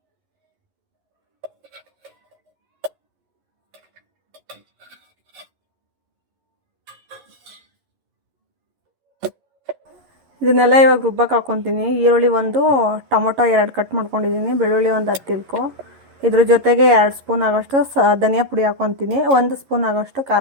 ಇದನ್ನೆಲ್ಲ ಇವಾಗ ರುಬ್ಬಕ್ಕೆ ಹಾಕ್ಕೊತೀನಿ. ಈರುಳ್ಳಿ ಒಂದು, ಟೊಮೊಟೊ 2 ಕಟ್ ಮಾಡ್ಕೊಂಡಿದ್ದೀನಿ, ಬೆಳ್ಳುಳ್ಳಿ ಒಂದು 10 ಇಲ್ಕು. ಇದ್ರ ಜೊತೆಗೆ 2 ಸ್ಪೂನ್ ಆಗೋಷ್ಟು ಧನಿಯಾ ಪುಡಿ ಹಾಕ್ಕೊತೀನಿ, 1 ಸ್ಪೂನ್ ಆಗೋಷ್ಟು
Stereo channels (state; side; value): late; left; 11 ms